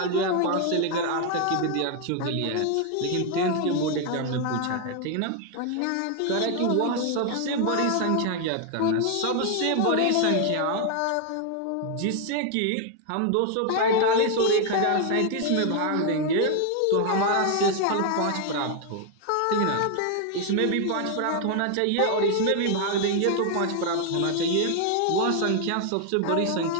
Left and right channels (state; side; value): different; both; correlation 0.00